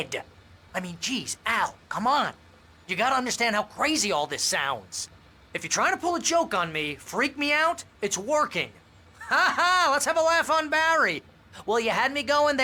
I mean, geez, Al, come on. You gotta understand how crazy all this sounds. If you're trying to pull a joke on me, freak me out, it's working. Ha ha, let's have a laugh on Barry. Well, you had me going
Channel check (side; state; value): both; identical; correlation 1.00